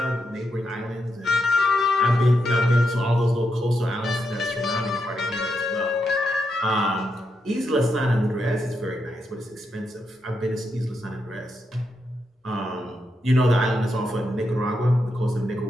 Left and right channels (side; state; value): both; normal; correlation 0.83